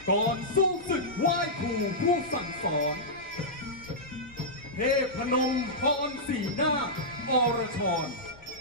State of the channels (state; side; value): noise; left; rumble, 23 dB below the sound